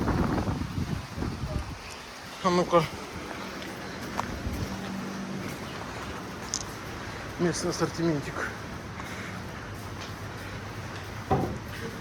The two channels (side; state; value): both; identical; correlation 1.00